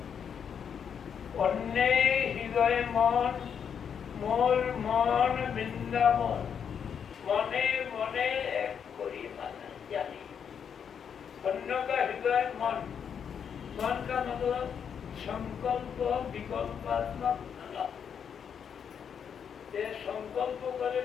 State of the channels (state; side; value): quieter; right; 7.5 dB